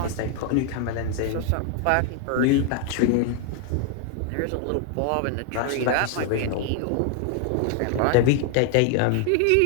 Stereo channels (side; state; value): both; different; correlation 0.00